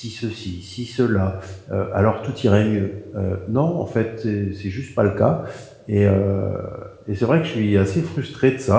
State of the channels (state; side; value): identical; both; correlation 1.00